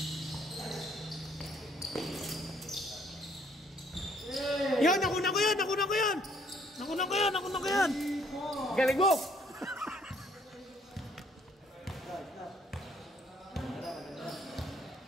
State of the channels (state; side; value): normal; both; correlation 0.64